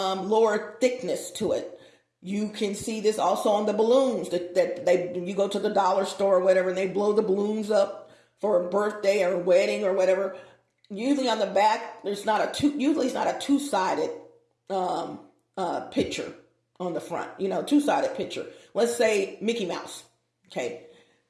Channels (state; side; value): identical; both; correlation 1.00